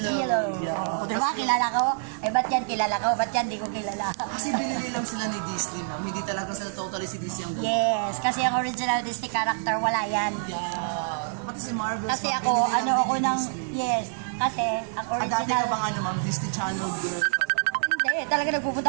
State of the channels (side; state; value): left; silent; digital silence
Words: Yeah. Diba, kilala ko? Ba't yan kilala ko? Ba't yan di ko kilala? Kasi binili lang sila ni Disney, ma'am. Hindi talaga sila totally si Disney ang Yes, kasi ang original Disney character, wala yan. Yeah. Pati si Marvel. Kasi ako, ako ng, yes, kasi ang Dati ka original, bang ma'am, Disney Channel girl? hindi, talaga